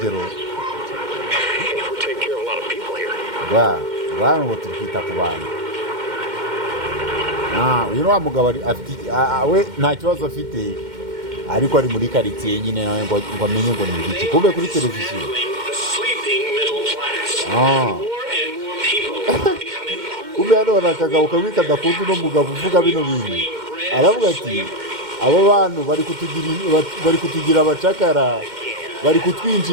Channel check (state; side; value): late; left; 2.1 ms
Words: Bantu ngo turi kwita ku bantu. Uyu ni wa mugabo we nta kibazo afite ariko ari muri karitsiye nyine nawe ngo amenye ngo ni iki kube kuri televiziyo. Ube hano akagabo kamwe kadakunda uno mugabo uvuga bino bintu. Aravuga ati abo bantu bari kutugira abacakara, bari